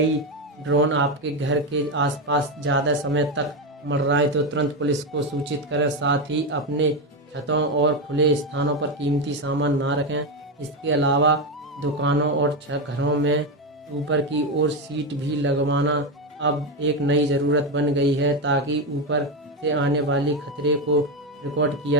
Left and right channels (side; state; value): both; normal; correlation 0.11